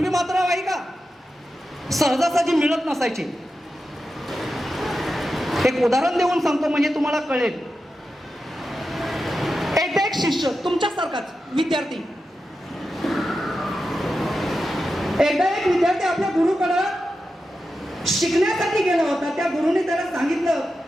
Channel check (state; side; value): normal; both; correlation 0.90